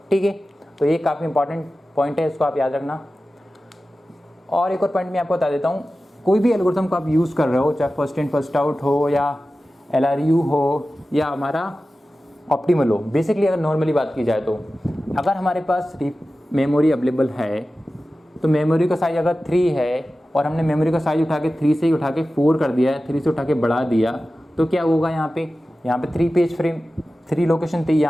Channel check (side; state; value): both; normal; correlation 0.95